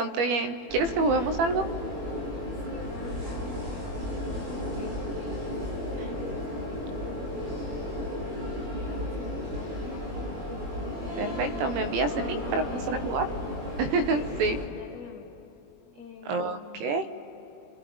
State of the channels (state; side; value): late; left; 21 ms